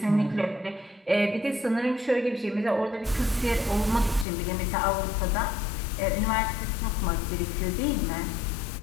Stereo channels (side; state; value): right; drops out; at 4.2 s